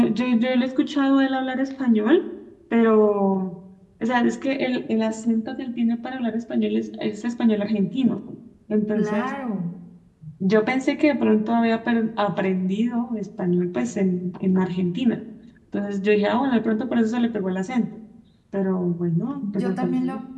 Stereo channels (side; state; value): both; identical; correlation 1.00